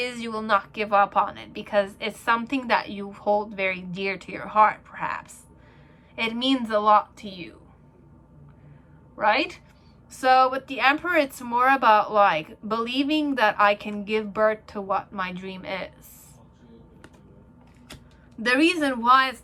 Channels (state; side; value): identical; both; correlation 1.00